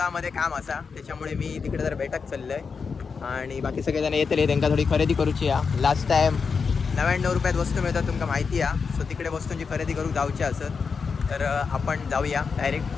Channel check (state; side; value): quieter; right; 5.4 dB